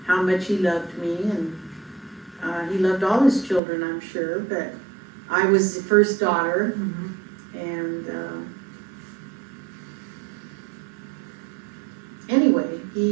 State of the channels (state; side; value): drops out; left; at 3.6 s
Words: how much he loved me. And he loved all his children, I'm sure. But I was the first daughter. And anyway,